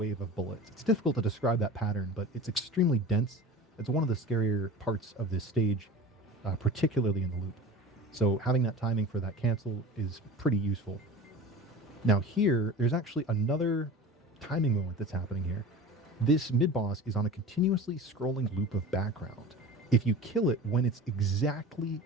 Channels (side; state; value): both; normal; correlation 0.36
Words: of bullets. It's difficult to describe that pattern, but it's extremely dense. It's one of the scarier parts of this stage, particularly in the loop. So having that timing for that cancel is pretty useful. Now here, there's actually another timing moment that's happening here. This mid-boss is on a continuously scrolling loop of background. If you kill it when it's exactly